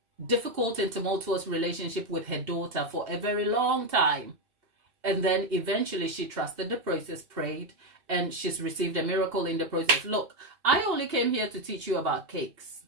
difficult and tumultuous relationship with her daughter for a very long time. And then eventually she trusted the process, prayed, and she's received a miracle in the process. Look, I only came here to teach you about cakes.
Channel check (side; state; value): left; late; 2.8 ms